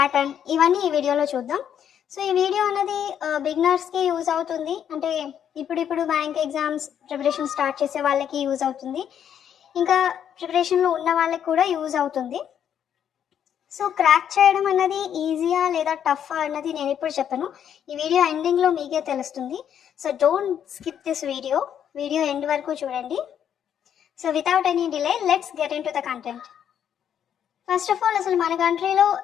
ఇవన్నీ ఈ వీడియోలో చూద్దాం. సో ఈ వీడియో అనేది బిగినర్స్కి యూజ్ అవుతుంది. అంటే ఇప్పుడు బ్యాంక్ ఎగ్జామ్స్ ప్రిపరేషన్ స్టార్ట్ చేసే వాళ్ళకి యూజ్ అవుతుంది, ఇంకా ప్రిపరేషన్లో ఉన్న వాళ్ళకి కూడా యూజ్ అవుతుంది. సో క్రాక్ చేయడం అన్నది ఈజీయా లేదా టఫ్ అన్నది నేను ఇప్పుడు చెప్పను, ఈ వీడియో ఎండింగ్లో మీకే తెలుస్తుంది. So don't skip this video end వరకు చూడండి. So without any delay let's get in to the content. First of all, అసలు మన కంట్రీలో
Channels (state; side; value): quieter; right; 9.1 dB